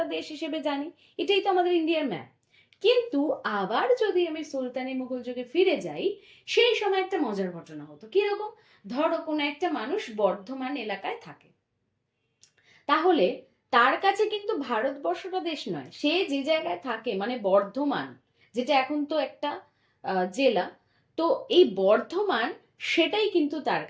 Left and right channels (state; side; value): identical; both; correlation 1.00